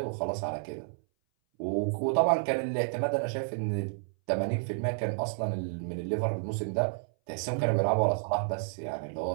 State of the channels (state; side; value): silent; left; 58 dB below the other